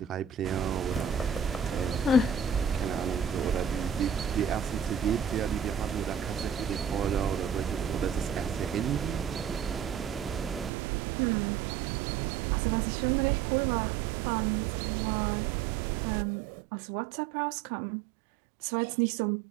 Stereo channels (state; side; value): drops out; left; at 10.7 s